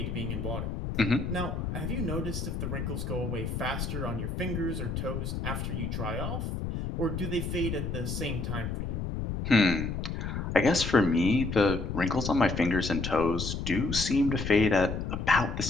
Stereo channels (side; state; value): left; noise; rumble, 3 dB below the sound